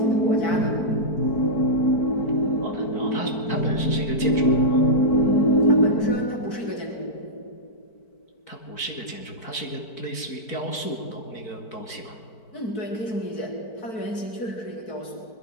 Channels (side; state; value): right; late; 4.5 ms